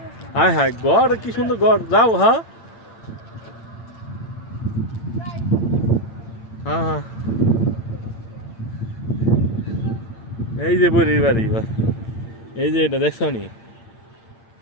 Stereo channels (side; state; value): right; late; 8.8 ms